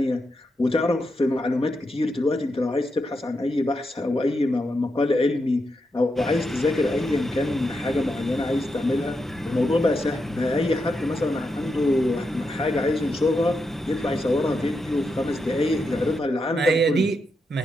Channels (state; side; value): normal; both; correlation 0.85